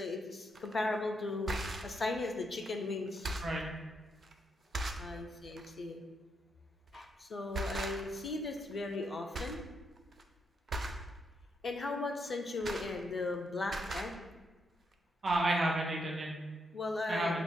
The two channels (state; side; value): normal; both; correlation 0.79